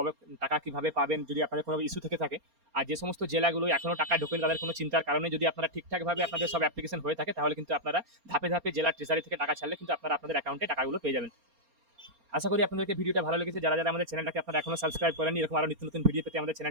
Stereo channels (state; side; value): late; left; 4.3 ms